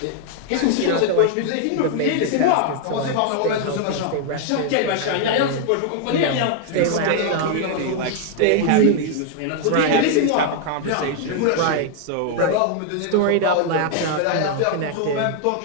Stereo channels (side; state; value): both; different; correlation 0.00